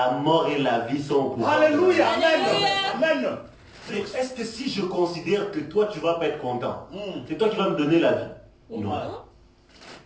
mort et la vie sont au pouvoir. Alléluia. Alléluia. Amen. Donc, est-ce que si je considère que toi, tu vas pas être content, c'est toi qui vas me donner la vie? Non.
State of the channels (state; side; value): identical; both; correlation 1.00